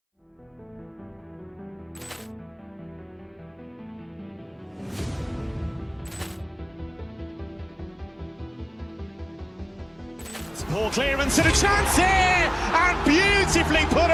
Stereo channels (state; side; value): identical; both; correlation 1.00